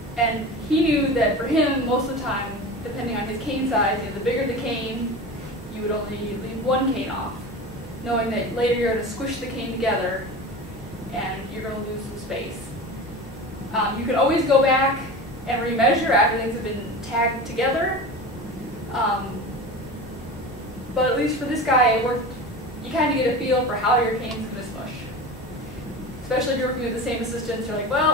And he knew that for him, most of the time, depending on his cane size, the bigger the cane, you would only leave one cane off, knowing that later you're going to squish the cane together and you're going to lose some space. You can always go back and remeasure after things have been tagged together. But at least for this guy, it worked. You kind of get a feel for how your cane's going to smush. Especially if you're working with the same assistants, you're like,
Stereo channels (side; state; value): both; normal; correlation 0.31